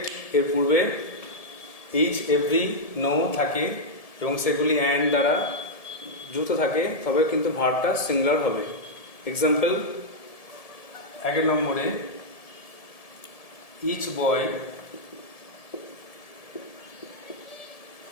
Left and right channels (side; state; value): right; late; 1.7 ms